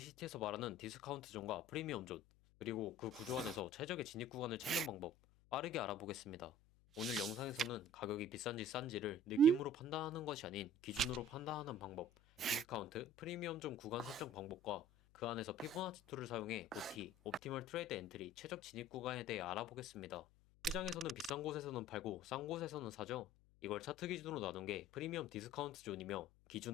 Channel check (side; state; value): left; noise; hum, 28 dB below the sound